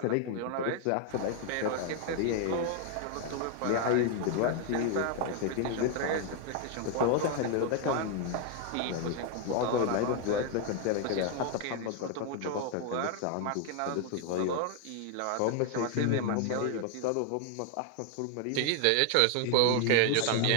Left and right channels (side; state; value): both; different; correlation 0.00